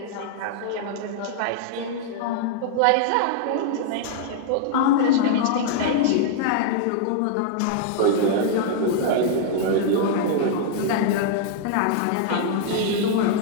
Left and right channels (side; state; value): both; different; correlation -0.01